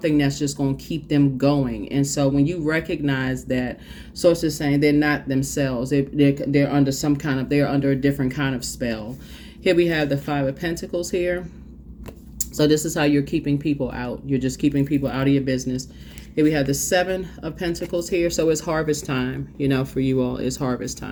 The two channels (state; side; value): identical; both; correlation 1.00